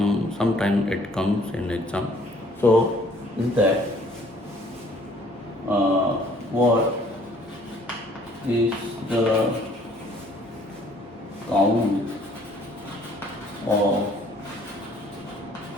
it comes in exam. So, is that what is the count of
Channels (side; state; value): both; normal; correlation 0.59